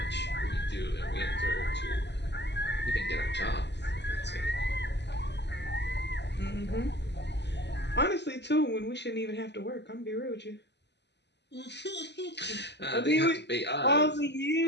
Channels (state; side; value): late; right; 0.50 ms